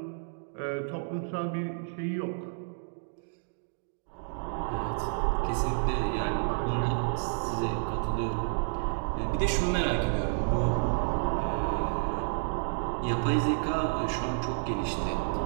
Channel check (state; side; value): silent; left; digital silence